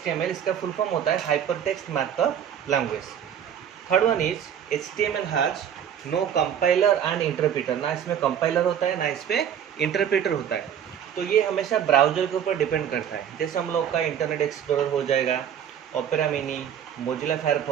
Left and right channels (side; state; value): left; quieter; 9.1 dB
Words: इसका फुल फॉर्म होता है hyper text markup language. Third one is HTML has no compiler and interpreter. ना इसमें कंपाइलर होता है ना इस पर इंटरप्रीटर होता है। तो ये हमेशा ब्राउजर के ऊपर डिपेंड करता है। जैसे हम लोग का इंटरनेट एक्सप्लोरर हो जाएगा, opera mini, Mozilla